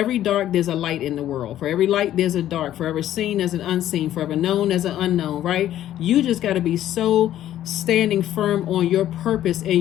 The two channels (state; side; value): quieter; right; 12.3 dB